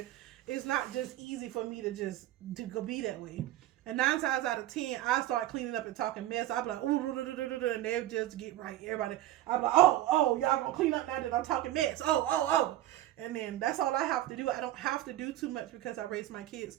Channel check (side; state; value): left; quieter; 14.3 dB